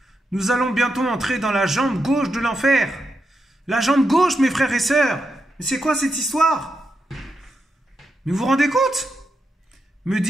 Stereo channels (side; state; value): both; normal; correlation 0.85